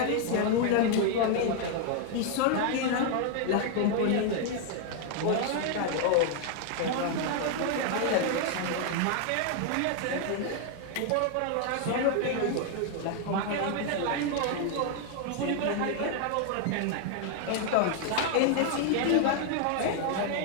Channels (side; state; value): both; different; correlation 0.00